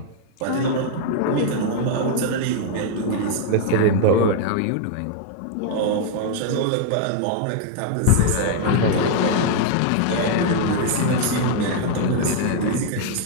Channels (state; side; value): different; both; correlation 0.00